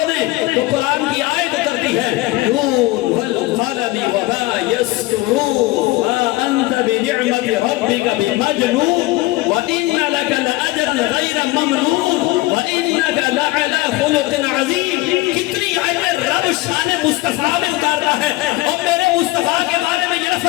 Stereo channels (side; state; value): right; quieter; 19.7 dB